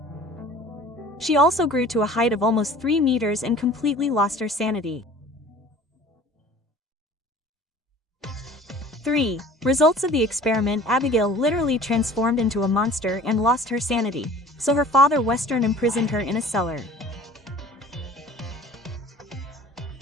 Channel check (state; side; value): normal; both; correlation 0.46